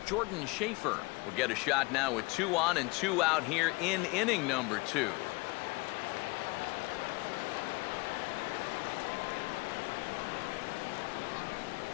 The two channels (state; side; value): quieter; right; 25.5 dB